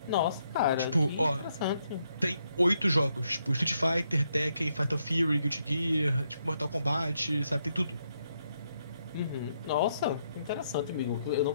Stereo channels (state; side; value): inverted; both; correlation -0.77